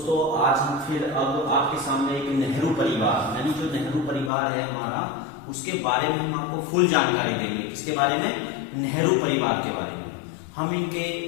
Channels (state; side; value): drops out; right; at 4.3 s